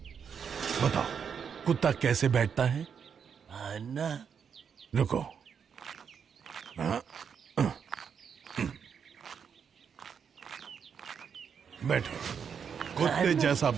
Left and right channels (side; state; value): left; quieter; 7.0 dB